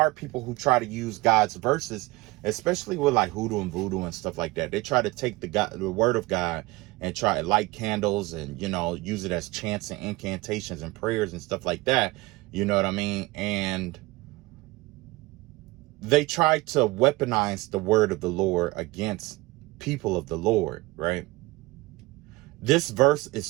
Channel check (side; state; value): left; quieter; 21.3 dB